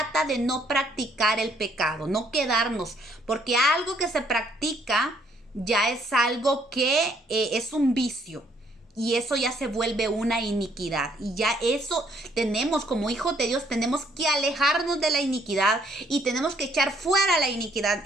de no practicar el pecado, no quedarnos. Porque algo que se practica ya es algo que es un vicio. Y eso ya se vuelve una iniquidad. Y ya eso tenemos, como hijos de Dios, tenemos que alejarnos de la iniquidad y tenemos que echar fuera la iniquidad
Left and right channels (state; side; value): normal; both; correlation 0.67